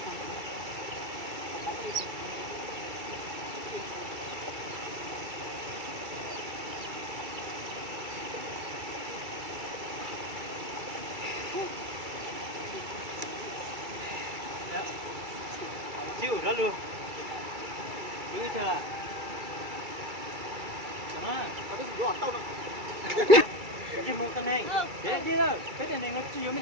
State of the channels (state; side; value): late; left; 2.3 ms